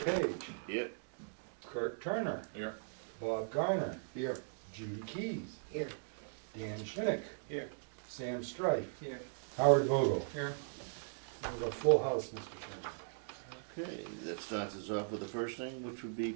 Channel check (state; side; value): silent; left; digital silence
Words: Here. Kurt Turner. Here. Bob Garner. Here. Judy Keys. Here. Dan Schinick. Here. Sam Strife. Here. Howard Vogel. Here. We have a full house, Mr. Chairman. Okay, that starts us off with the first thing, which would be